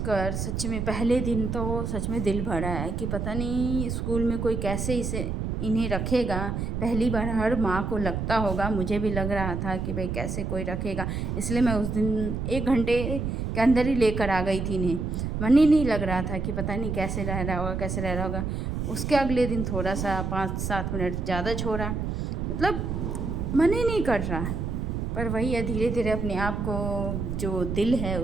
सच में पहले दिन तो सच में दिल भरा है कि पता नहीं स्कूल में कोई कैसे इन्हें रखेगा। पहली बार हर माँ को लगता होगा, मुझे भी लग रहा था कि भाई कैसे कोई रखेगा, इसलिए मैं उस दिन 1 घंटे के अंदर ही लेकर आ गई थी इन्हें। मन ही नहीं लग रहा था कि पता नहीं कैसे रह रहा होगा, कैसे रह रहा होगा। उसके अगले दिन थोड़ा सा 5-7 मिनट ज़्यादा छोड़ा, मतलब मन ही नहीं कर रहा। पर वही है, धीरे धीरे अपने आप को जो दिल है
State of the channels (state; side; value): noise; right; rumble, 2 dB below the sound